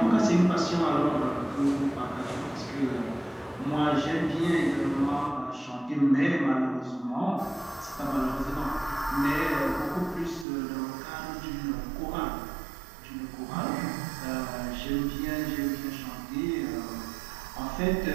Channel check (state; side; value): drops out; left; at 10.5 s